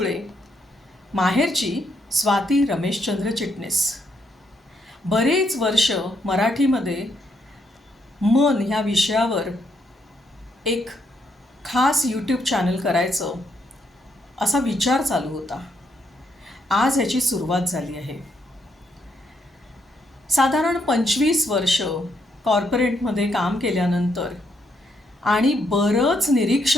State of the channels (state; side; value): normal; both; correlation 0.76